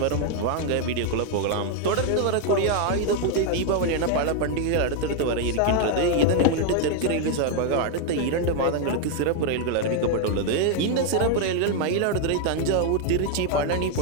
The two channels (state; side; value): different; both; correlation 0.00